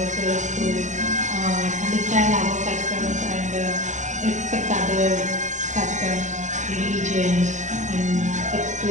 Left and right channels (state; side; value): late; left; 0.35 ms